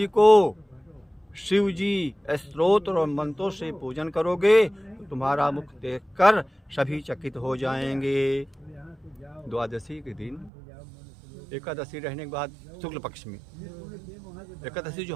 को शिव जी स्तोत्र और मंत्रों से पूजन करोगे तो तुम्हारा मुख देखकर सभी चकित हो जाएंगे। द्वादशी के दिन एकादशी रहने के बाद शुक्ल पक्ष में एकादशी जो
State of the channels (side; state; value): left; drops out; at 10.5 s